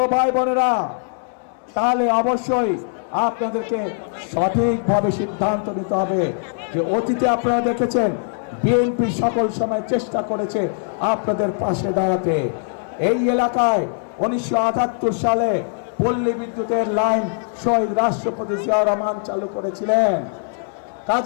ভাই বোনেরা, তাহলে অবশ্যই আপনাদেরকে সঠিকভাবে সিদ্ধান্ত নিতে হবে। যে অতীতে আপনারা দেখেছেন বিএনপি সকল সময় চেষ্টা করেছে আপনাদের পাশে দাঁড়াতে। এই এলাকায় 1978 সালে পল্লী বিদ্যুতের লাইন শহীদ রাষ্ট্রপতি জিয়াউর রহমান চালু করেছিলেন।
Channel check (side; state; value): right; silent; digital silence